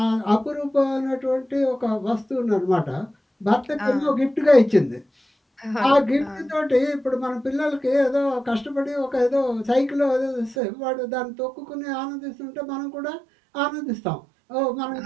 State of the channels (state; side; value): drops out; left; at 10.6 s